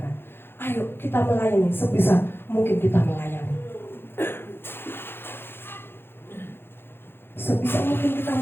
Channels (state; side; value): late; right; 0.11 ms